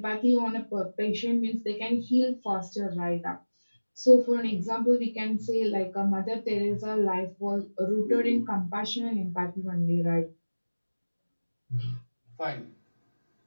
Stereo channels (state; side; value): inverted; both; correlation -1.00